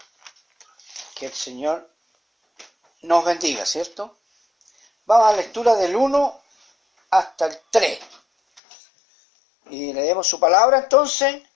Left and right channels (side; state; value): right; drops out; at 8.6 s